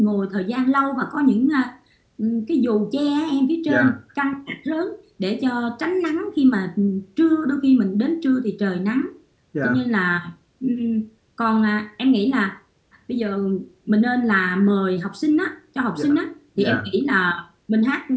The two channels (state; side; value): identical; both; correlation 1.00